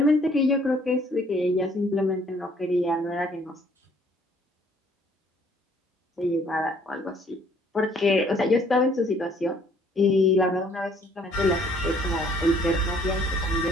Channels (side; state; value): both; normal; correlation 0.61